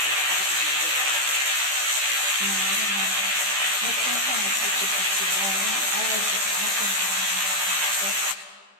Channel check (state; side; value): late; left; 15 ms